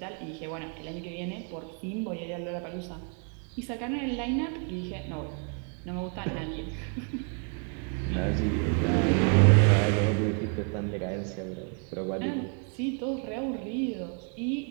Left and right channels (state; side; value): quieter; left; 39.9 dB